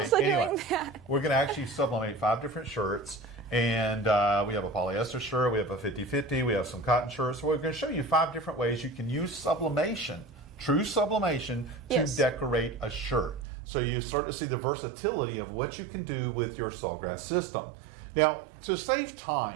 anyway, doing that. We're going to actually sublimate 5 different shirts. And we have a polyester shirt, we have a 50-50, we have some cotton shirts. So we're going to show you 5 different ways you can use sublimation, true sublimation, to decorate a shirt. So you start to see the versatility of what you can do with your Sawgrass system. Now, to save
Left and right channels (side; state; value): left; drops out; at 13.5 s